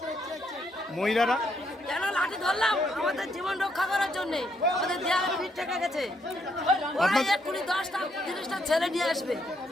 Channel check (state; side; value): normal; both; correlation 0.74